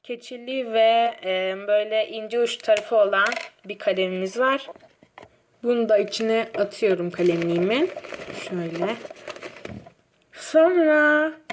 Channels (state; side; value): identical; both; correlation 1.00